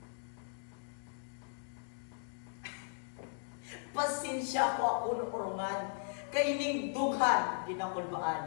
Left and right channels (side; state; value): right; silent; digital silence